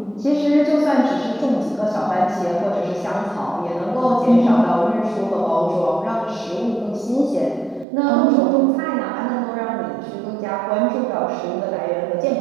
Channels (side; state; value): left; drops out; at 7.9 s